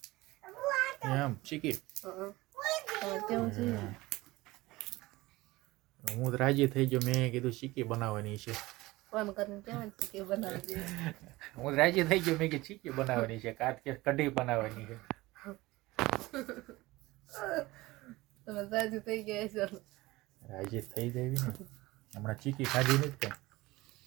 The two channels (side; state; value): left; quieter; 19.9 dB